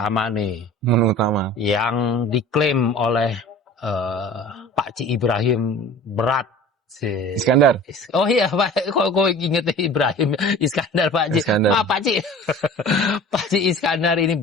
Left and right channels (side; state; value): both; normal; correlation 0.42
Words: nih. Menu utama. Yang diklaim oleh Pak Ci Ibrahim berat sih. Iskandar. Oh iya, Pak. Kok inget Ibrahim Iskandar Pak Ci. Maaf Pak Ci. Pak Ci Iskandar ini